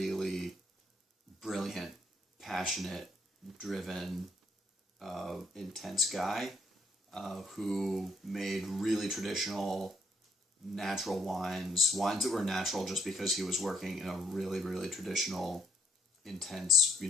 brilliant, passionate, driven, intense guy who made really traditional, natural wines that were natural just because he was working in a really, really traditional, intense,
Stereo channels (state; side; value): normal; both; correlation 0.69